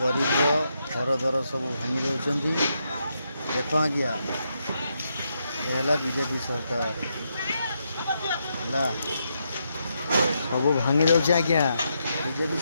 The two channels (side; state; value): both; inverted; correlation -0.81